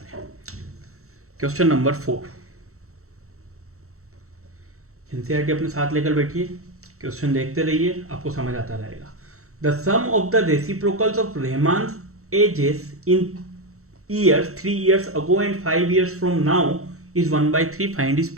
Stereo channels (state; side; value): late; left; 0.64 ms